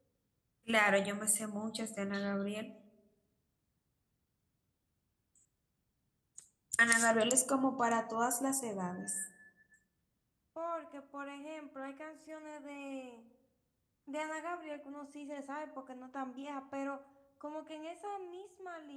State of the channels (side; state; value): both; identical; correlation 1.00